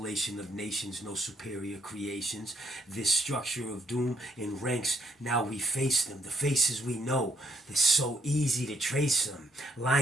of nations, no superior creations. This structure of doom in ranks, now we face them. The faces we know, it's so easy to trace them.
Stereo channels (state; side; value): normal; both; correlation 0.71